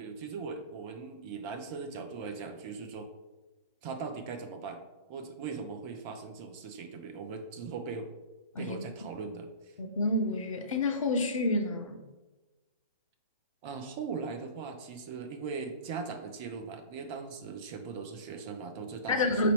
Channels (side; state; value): both; inverted; correlation -0.36